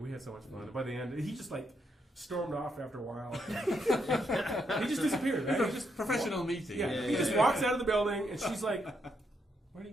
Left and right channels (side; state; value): both; normal; correlation 0.78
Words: we had so much fun. And by the end, he just like stormed off after a while. He just disappeared, man. He just Professional meeting. Yeah, he just walks out of the building, and she's like, "Where'd he